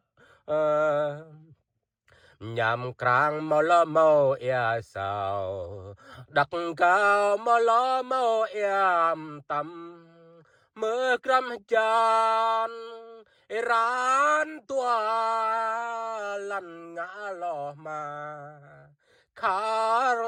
nhằm krang mò lo mò ea sao đặc cao mò lo mò em tâm mơ cram chan ran tua lăn ngã lo mà khar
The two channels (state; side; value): identical; both; correlation 1.00